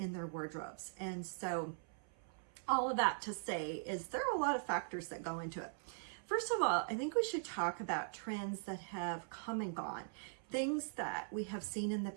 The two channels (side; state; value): left; silent; 50 dB below the other